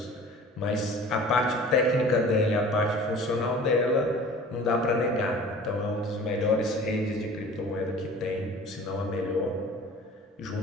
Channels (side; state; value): both; normal; correlation 0.44